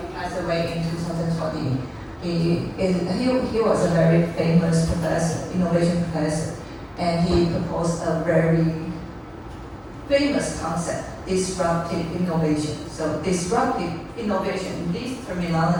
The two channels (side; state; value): both; identical; correlation 1.00